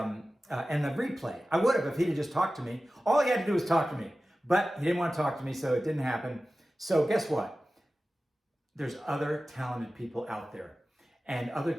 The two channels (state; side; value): normal; both; correlation 0.95